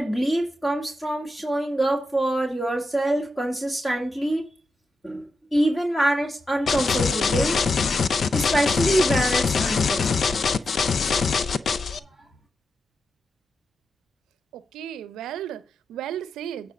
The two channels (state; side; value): normal; both; correlation 0.87